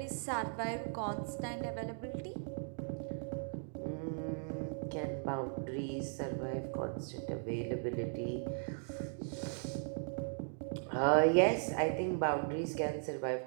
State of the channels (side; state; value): left; silent; digital silence